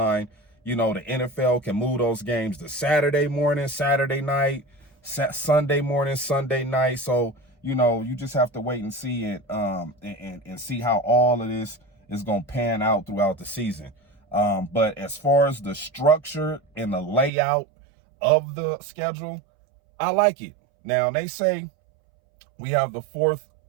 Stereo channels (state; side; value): drops out; left; at 17.3 s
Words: you know, the NFL can move those games to Saturday morning, Saturday night, Sunday morning, Sunday night. So, you know, you just have to wait and see it, and see how all of this is going to pan out throughout the season. But as far as the structure and the layout of the schedule, I like it. Now, they say we have the 4th